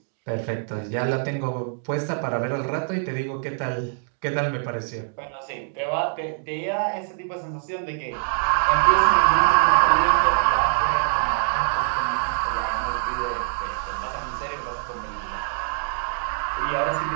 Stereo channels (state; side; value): silent; left; digital silence